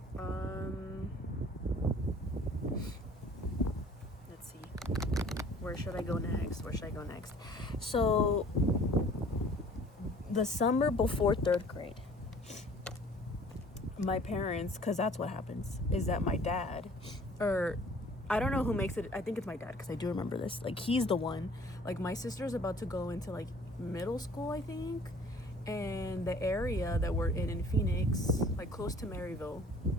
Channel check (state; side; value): normal; both; correlation 0.52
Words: Let's see. Where should I go next? So, the summer before 3rd grade, my parents, because that's what happens, is that my dad, or I don't know who makes it. I think it's my dad, because I do remember this. Like, he's the one. Like, my sister's about to go into, like, middle school, I think. And the area that we're in Phoenix, like, close to Maryville,